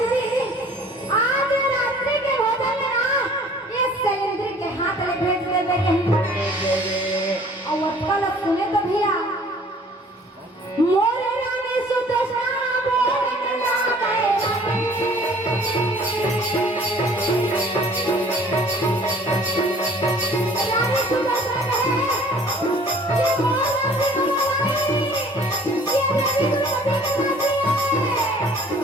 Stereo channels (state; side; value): normal; both; correlation 0.53